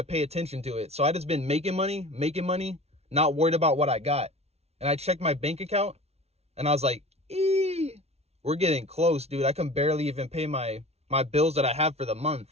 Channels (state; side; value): late; left; 0.31 ms